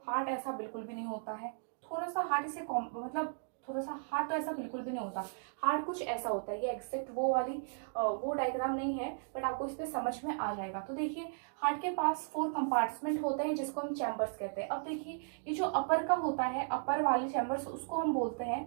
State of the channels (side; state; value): left; silent; digital silence